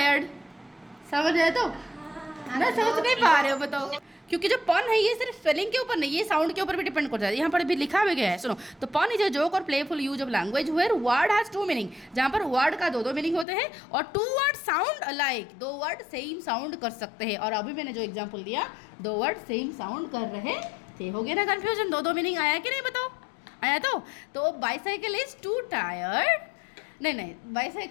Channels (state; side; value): drops out; right; at 13.5 s